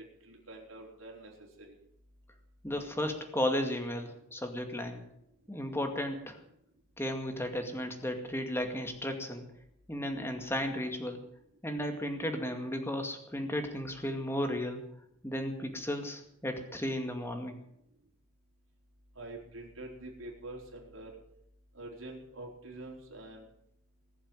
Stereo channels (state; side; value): normal; both; correlation 0.62